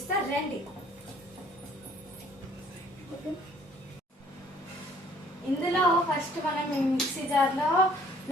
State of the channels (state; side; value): normal; both; correlation 0.58